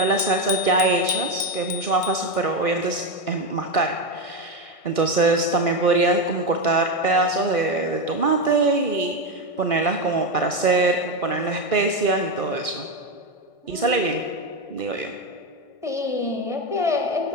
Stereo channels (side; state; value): right; late; 1.6 ms